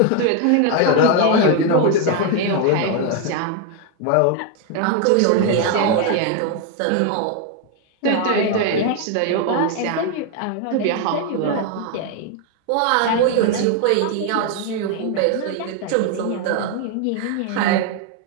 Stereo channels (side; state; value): both; different; correlation 0.01